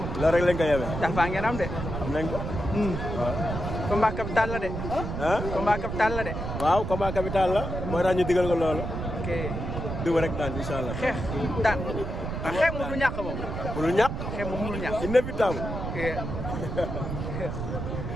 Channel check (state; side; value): noise; right; rumble, 5 dB below the sound